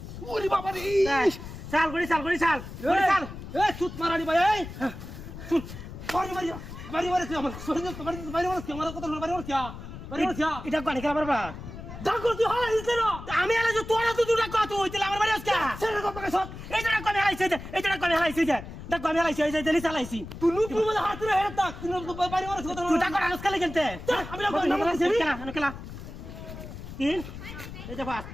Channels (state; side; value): noise; left; rumble, 11 dB below the sound